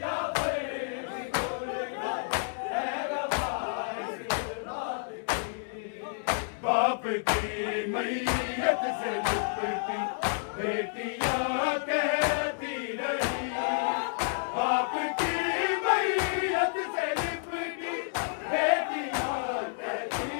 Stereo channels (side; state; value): right; silent; 58 dB below the other